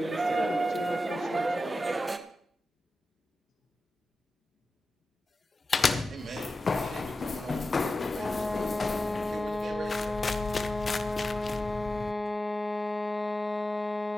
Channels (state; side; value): normal; both; correlation 0.93